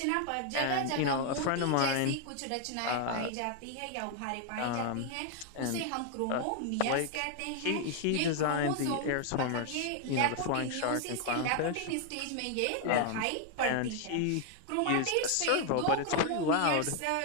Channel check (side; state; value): both; different; correlation 0.01